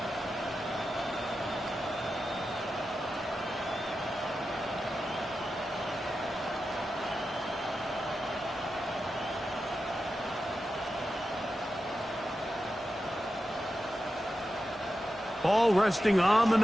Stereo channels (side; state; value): both; normal; correlation 0.90